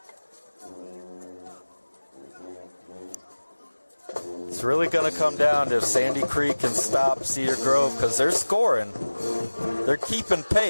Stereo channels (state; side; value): inverted; both; correlation -1.00